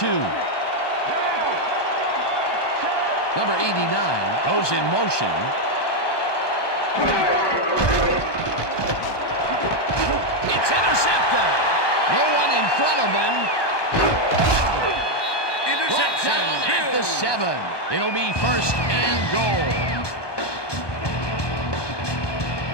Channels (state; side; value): late; right; 1.2 ms